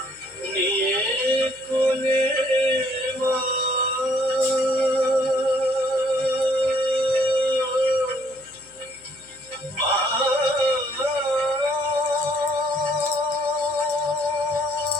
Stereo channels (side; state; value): left; noise; hum, 30 dB below the sound